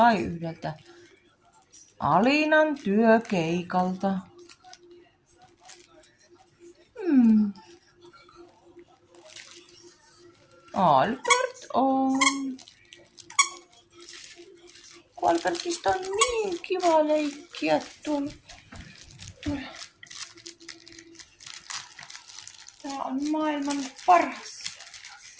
yhdeltä Alinan työkeikalta. Albert on. Albertista on niin kiva leikkiä tuolla. Tämä on maailman paras.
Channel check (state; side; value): identical; both; correlation 1.00